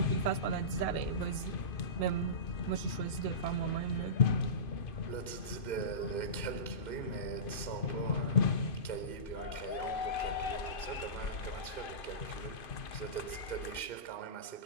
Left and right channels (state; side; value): late; right; 2.5 ms